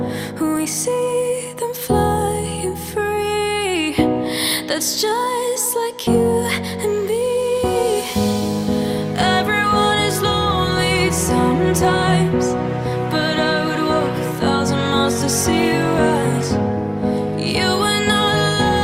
We see them flying free. That's just like you and me. Everyone is lonely sometimes, but I would walk 1,000 miles to see you rise. You are not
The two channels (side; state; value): both; identical; correlation 1.00